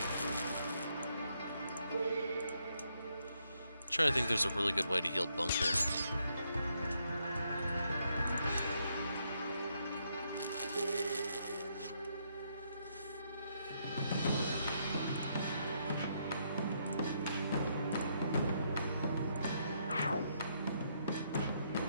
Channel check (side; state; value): both; inverted; correlation -0.75